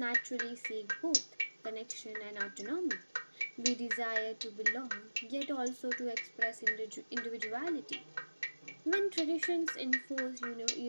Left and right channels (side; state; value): both; inverted; correlation -1.00